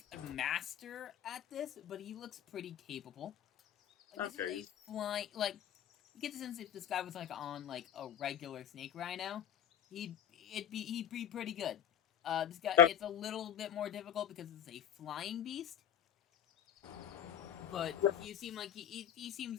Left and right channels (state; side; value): quieter; right; 9.8 dB